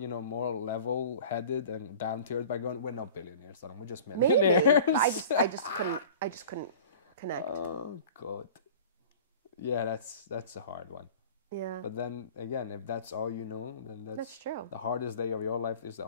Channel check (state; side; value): inverted; both; correlation -0.41